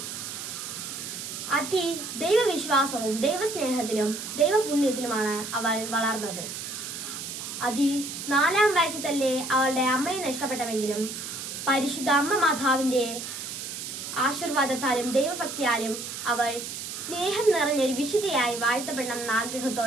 ദൈവവിശ്വാസവും ദൈവസ്നേഹത്തിലും ദൈവപുണ്യത്തിലുമാണ് അവൾ വളർന്നത്. 4-ാം വയസ്സിൽ തന്നെ അവളുടെ അമ്മയെ നഷ്ടപ്പെട്ടെങ്കിലും പരിശുദ്ധ അമ്മ മാതാവിന്റെ ആശീർവാദത്താലും ദൈവഭക്തിയാലും അവൾ സ്നേഹം നിറഞ്ഞൊരു വിശുദ്ധയായി വാഴ്ത്തപ്പെടണമെന്ന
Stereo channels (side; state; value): right; noise; hiss, 7 dB below the sound